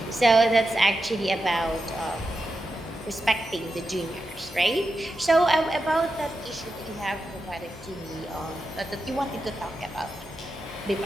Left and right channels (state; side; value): normal; both; correlation 0.89